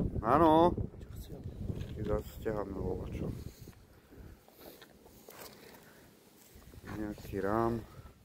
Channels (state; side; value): identical; both; correlation 1.00